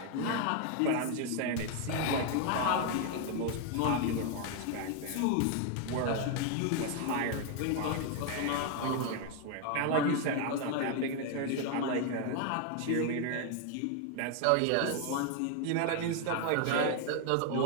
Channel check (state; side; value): different; both; correlation 0.01